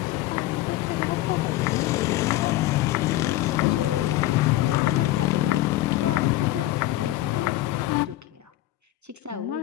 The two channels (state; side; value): quieter; right; 15.8 dB